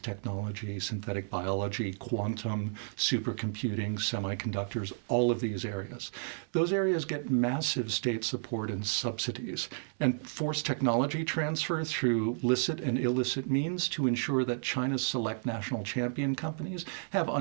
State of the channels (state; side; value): silent; left; 56 dB below the other